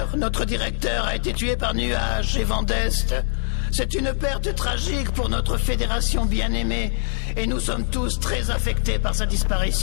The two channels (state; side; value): silent; right; digital silence